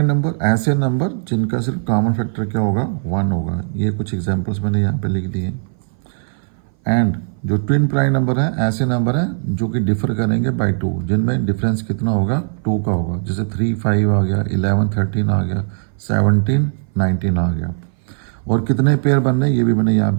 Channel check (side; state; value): left; silent; 60 dB below the other